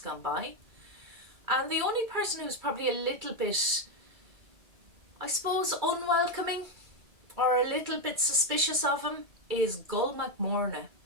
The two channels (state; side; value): late; left; 2.3 ms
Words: by. And the only person who's probably a little bit, I suppose, unwelcoming or a little bit suspicious of him is Gull MacMorna,